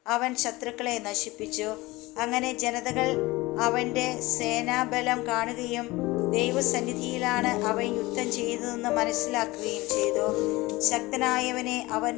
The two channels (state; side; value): quieter; right; 20.8 dB